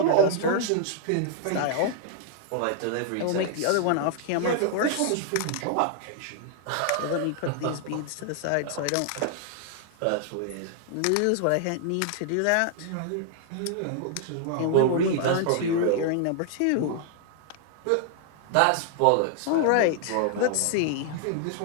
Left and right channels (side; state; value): both; different; correlation 0.00